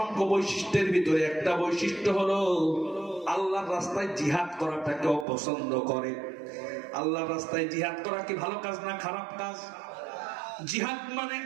বৈশিষ্ট্যের ভিতরে একটা বৈশিষ্ট্য হলো আল্লাহর রাস্তায় জিহাদ করাটাকে অপছন্দ করে। আল্লাহর রাস্তায় জিহাদ করা কি ভালো কাজ না খারাপ কাজ? জিহাদ মানে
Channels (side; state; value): left; drops out; at 5.2 s